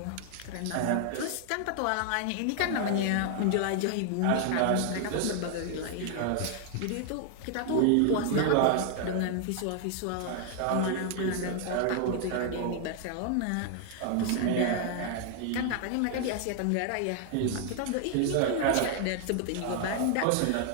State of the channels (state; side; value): different; both; correlation 0.00